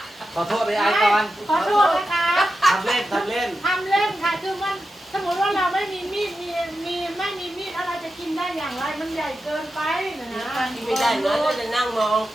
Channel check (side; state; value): both; normal; correlation 0.90